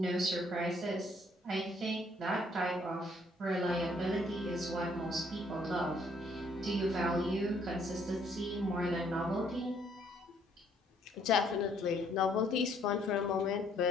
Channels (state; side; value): normal; both; correlation 0.65